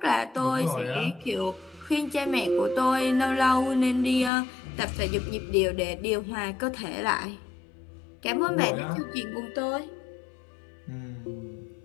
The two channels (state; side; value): drops out; right; at 4.3 s